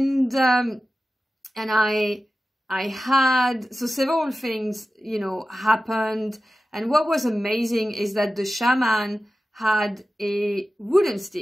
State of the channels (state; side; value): normal; both; correlation 0.94